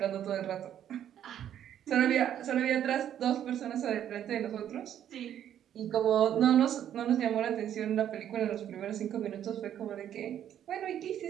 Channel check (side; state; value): left; quieter; 10.4 dB